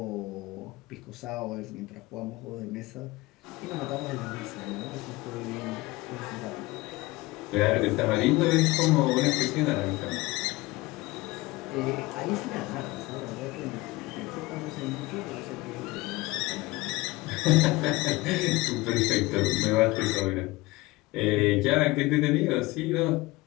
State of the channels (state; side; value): quieter; right; 21.1 dB